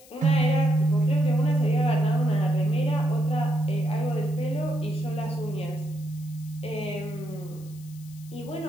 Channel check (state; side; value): noise; left; hiss, 23 dB below the sound